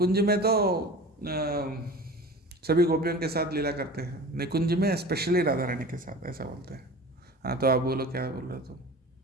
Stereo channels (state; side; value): normal; both; correlation 0.37